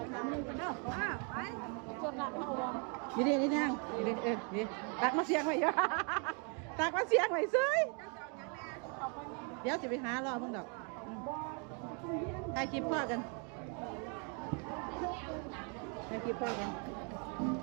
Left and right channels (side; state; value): left; quieter; 37.8 dB